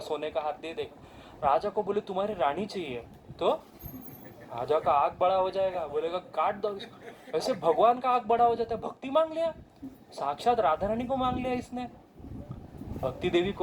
सोने का हाथ दे देगा। राजा को बोले तुम्हारी रानी चाहिए, तो राजा का आग बड़ा हो जाएगा, बोलेगा काट दो इसको। वैसे भगवान का आग बड़ा हो जाता है, भक्ति मांग लिया, साक्षात राधा रानी को मांग लिया इसने। भक्ति देवी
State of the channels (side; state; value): both; identical; correlation 1.00